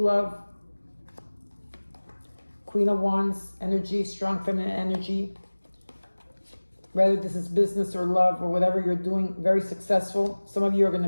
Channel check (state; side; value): inverted; both; correlation -1.00